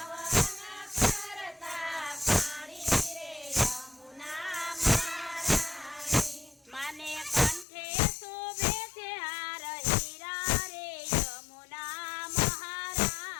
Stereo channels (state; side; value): drops out; right; at 7.7 s